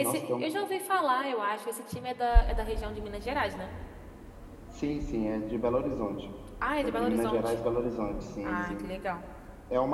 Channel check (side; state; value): both; identical; correlation 1.00